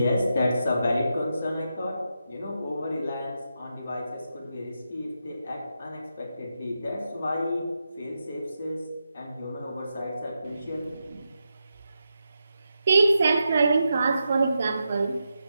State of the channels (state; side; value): inverted; both; correlation -0.87